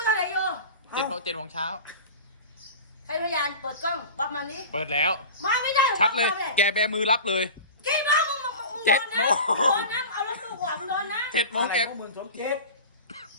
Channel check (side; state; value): both; inverted; correlation -0.35